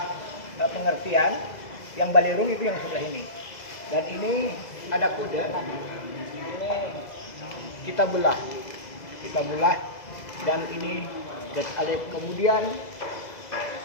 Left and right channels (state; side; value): late; right; 2.0 ms